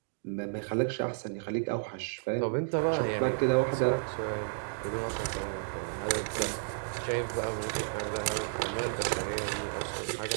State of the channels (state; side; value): silent; left; digital silence